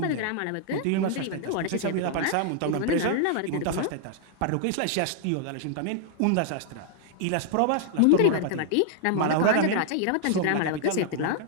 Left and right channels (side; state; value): both; different; correlation 0.00